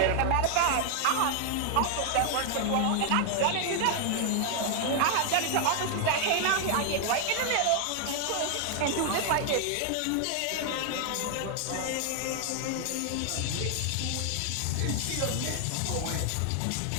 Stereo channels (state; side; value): different; both; correlation 0.00